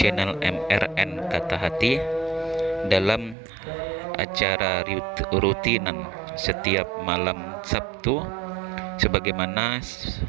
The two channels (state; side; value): drops out; left; at 3.4 s